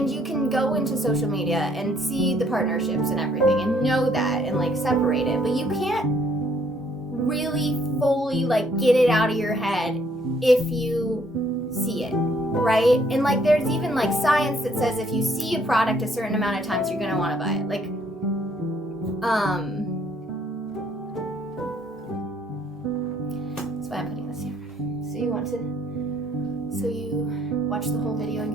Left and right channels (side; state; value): both; normal; correlation 0.66